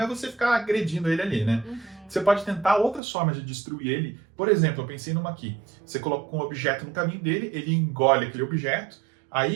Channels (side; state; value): left; drops out; at 3.0 s